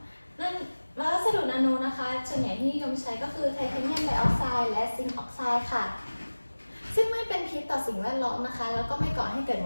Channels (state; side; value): inverted; both; correlation -1.00